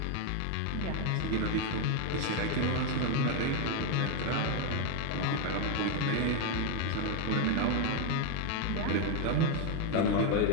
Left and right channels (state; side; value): different; both; correlation 0.01